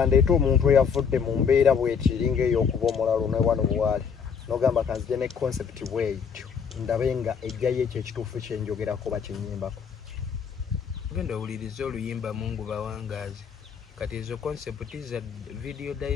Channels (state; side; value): quieter; right; 6.6 dB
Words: omuntu eyavudde mu mbeera bwetiringa ey'okuba omulalu ne wano bwali n'ogamba kanzije ne concept bwetyo ndabe nga ejjayo ekyo ekituufu kyenjogerako bakinyimbako genda owuliriza oluyimba mungu bawangaazi kati ezo concept za video